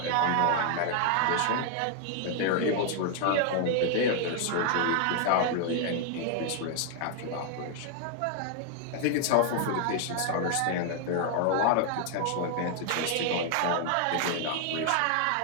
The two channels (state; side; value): different; both; correlation 0.00